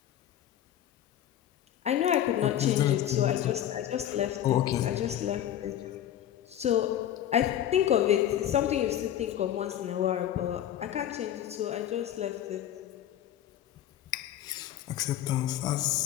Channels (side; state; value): right; quieter; 11.4 dB